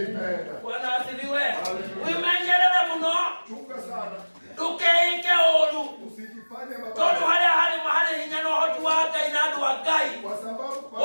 Bwana asifiwe. Wimenyerere muno ndũkeĩke ũũru tondũ harĩ hinya na ũhoti wa Ngai na andũ a Ngai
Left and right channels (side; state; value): both; inverted; correlation -1.00